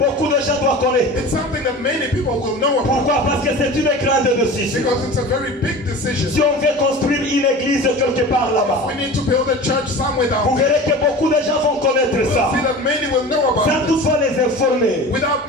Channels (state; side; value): normal; both; correlation 0.35